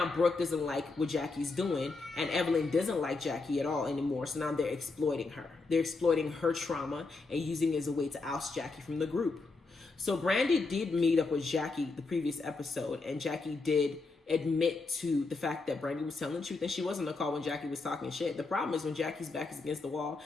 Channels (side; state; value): right; quieter; 3.8 dB